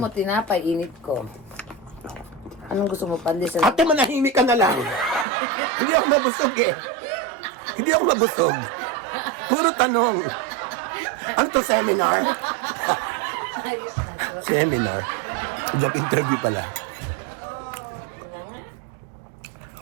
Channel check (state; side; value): drops out; left; at 5.2 s